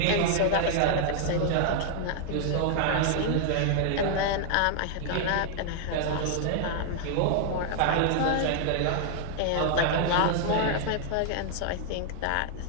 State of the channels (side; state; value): both; different; correlation 0.00